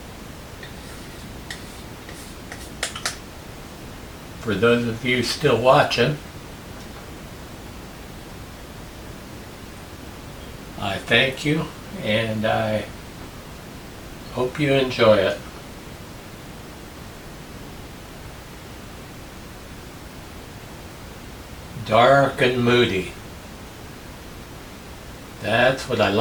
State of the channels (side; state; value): both; identical; correlation 1.00